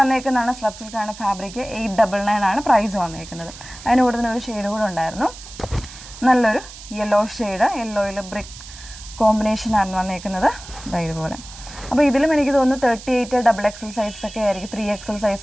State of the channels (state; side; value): noise; right; hiss, 16 dB below the sound